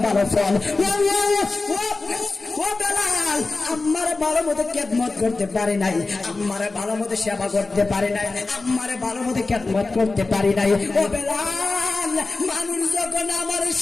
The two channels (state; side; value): quieter; right; 3.6 dB